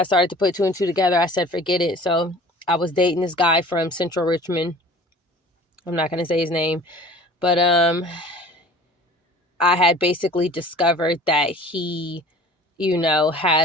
started to put two and two together, I said, forget it. So I was dating this guy from Central Richmond. I'm not going to say his name, but I had basically discovered that he,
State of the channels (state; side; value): normal; both; correlation 0.46